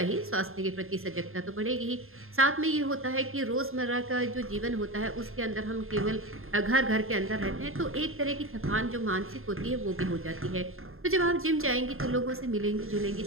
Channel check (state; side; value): late; left; 0.61 ms